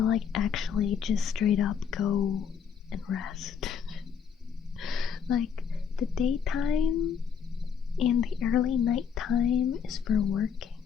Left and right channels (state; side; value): quieter; right; 7.1 dB